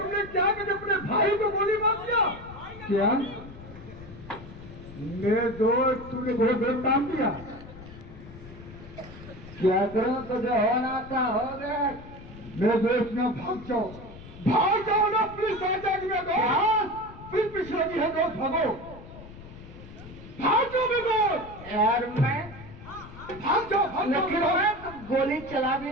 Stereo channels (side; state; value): left; noise; rumble, 16 dB below the sound